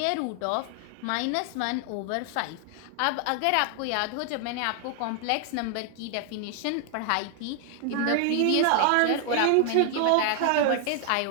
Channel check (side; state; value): both; different; correlation 0.00